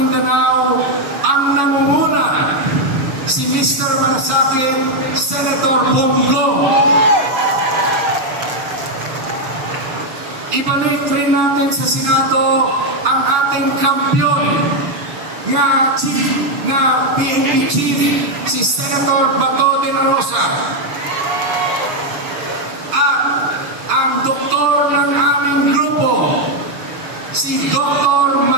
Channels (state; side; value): late; left; 7.0 ms